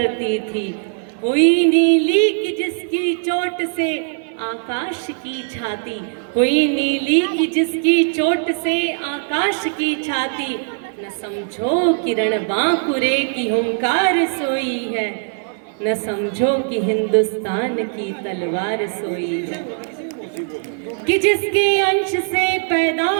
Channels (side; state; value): left; silent; digital silence